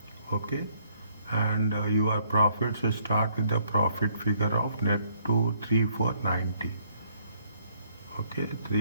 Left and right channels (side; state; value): both; inverted; correlation -0.67